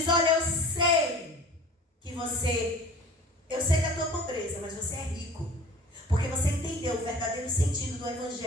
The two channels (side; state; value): both; normal; correlation 0.44